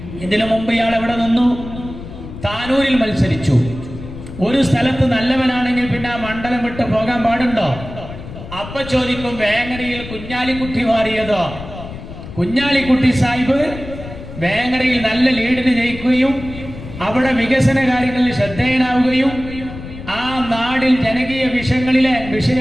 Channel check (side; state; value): left; noise; rumble, 12 dB below the sound